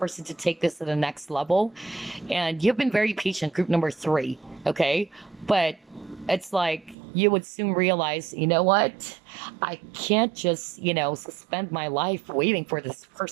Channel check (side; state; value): left; drops out; at 7.0 s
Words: to take this to the next level. And you've been very patient, group number 3, okay? But it's like you would soon realize, you know what? I can't just, suspend my life waiting for this